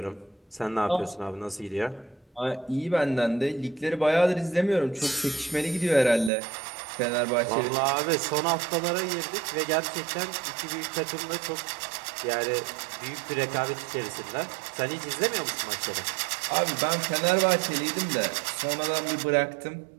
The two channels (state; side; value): drops out; left; at 6.3 s